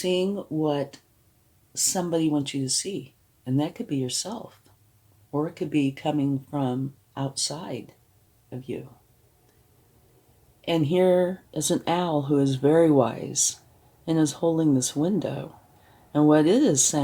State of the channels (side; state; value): both; identical; correlation 1.00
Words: what somebody wants you to see, and that could be yourself, or it could be coming from outside of you. And here is an owl who is very wise and is holding this window. And what it is